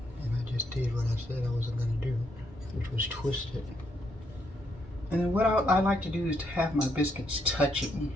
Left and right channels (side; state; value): both; normal; correlation 0.75